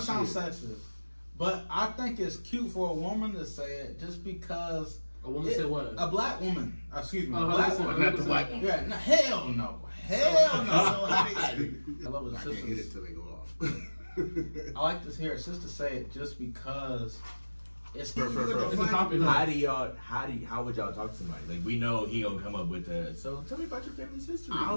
to all sound this sexist, but I think it's cute for a woman to say it just because. A woman said what? A black woman. Excuse me. Oh, A black 100%. woman. Not the white one. Yeah. No, hell no. Hell no. I love I his can't hit it sisters. till they go off. I like to hear a sister say it just because it's For It's a topic. how would y'all talk to somebody? Like we know he gonna come up with so tell me about your family's history. I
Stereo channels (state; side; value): inverted; both; correlation -1.00